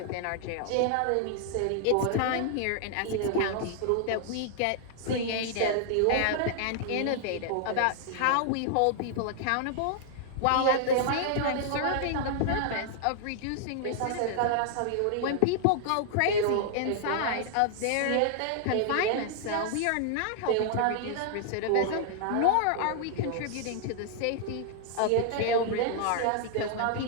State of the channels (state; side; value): different; both; correlation 0.00